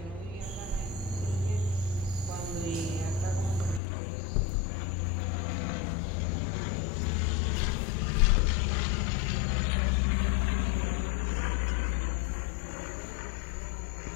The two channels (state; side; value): drops out; right; at 3.8 s